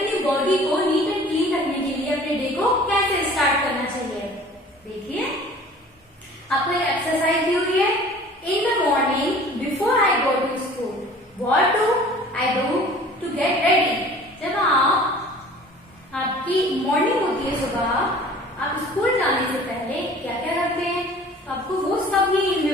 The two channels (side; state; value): both; normal; correlation 0.47